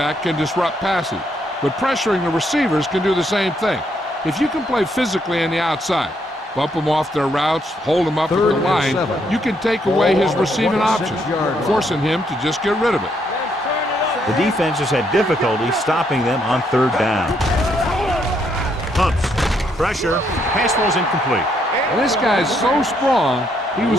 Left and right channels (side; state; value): both; normal; correlation 0.74